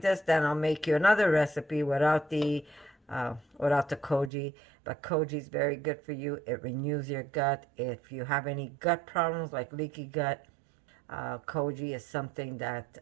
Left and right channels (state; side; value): drops out; left; at 4.3 s